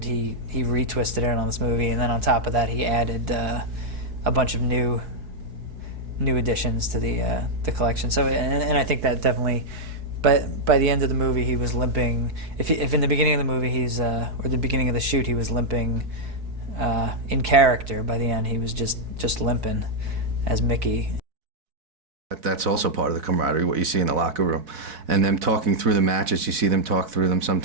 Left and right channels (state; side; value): late; left; 4.6 ms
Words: he retwisted it on this movie, and then on top of that, he added a bunch of new additions to the collection. So, and I think that definitely, but by the end of the movie, he was limping. If in the beginning of the movie or the beginning of the shoot, he was limping in character. By the end, he was just limping as Mickey. That's also part of the camaraderie, what you see in the locker room. And them talking through the matches, you see them talk through them